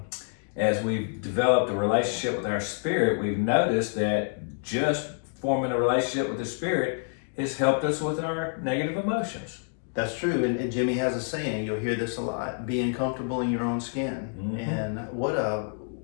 As we've developed a relationship with our spirit, we've noticed that just forming a relationship with the spirit has helped us with our negative emotions. That's true, and Jimmy has a saying. You'll hear this a lot: being comfortable in your own skin. And what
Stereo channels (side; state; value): right; silent; 60 dB below the other